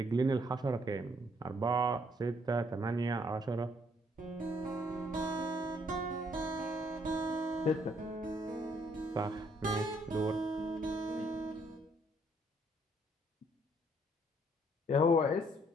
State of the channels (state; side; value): normal; both; correlation 0.67